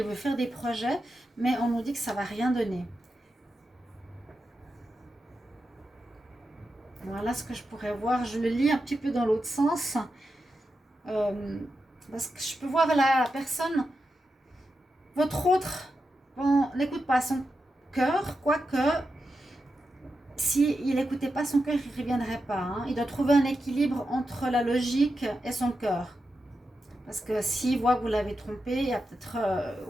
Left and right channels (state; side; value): normal; both; correlation 0.89